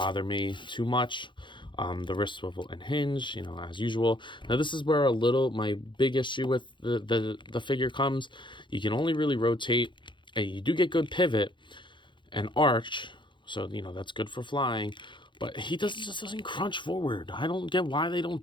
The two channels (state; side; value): late; right; 0.23 ms